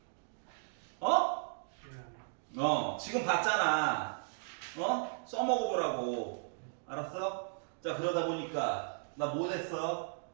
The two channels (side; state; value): left; silent; digital silence